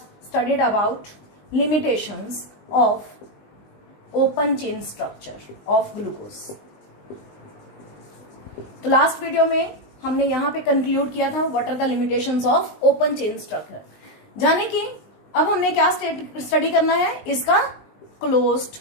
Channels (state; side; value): late; right; 19 ms